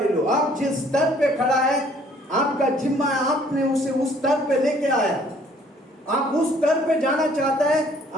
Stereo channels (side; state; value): both; normal; correlation 0.59